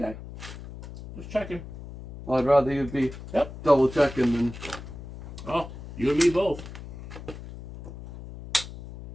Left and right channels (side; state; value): left; noise; hum, 13 dB below the sound